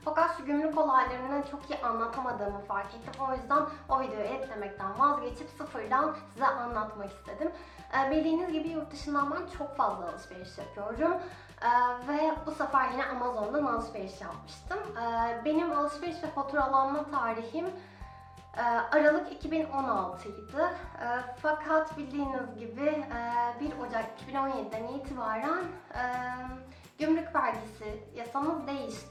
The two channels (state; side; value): identical; both; correlation 1.00